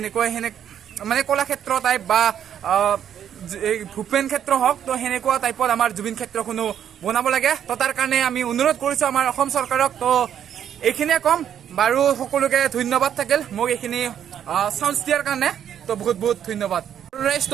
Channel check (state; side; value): quieter; left; 9.4 dB